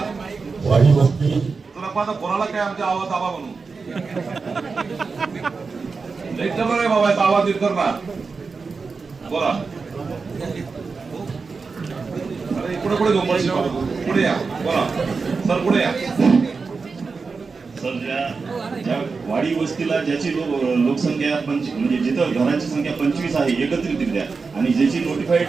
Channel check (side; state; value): left; quieter; 4.6 dB